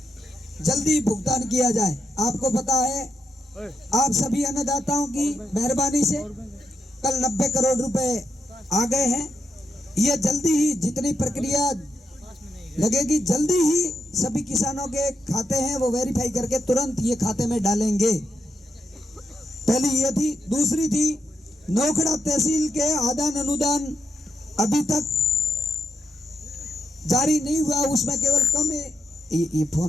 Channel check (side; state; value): both; normal; correlation 0.81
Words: जल्दी भुगतान किया जाए। आपको पता है आप सभी अन्नदाताओं की मेहरबानी से कल 90 करोड़ रुपए आ गए हैं। ये जल्दी ही जितनी प्रक्रिया लगेगी जल्दी ही सभी किसानों के खाते हैं वो वेरीफाई करके तुरंत ये खाते में डालेंगे। पहली ये थी। दूसरी थी नोखड़ा तहसील के आदान अनुदान अभी तक जारी नहीं हुआ, उसमें केवल कम है। ये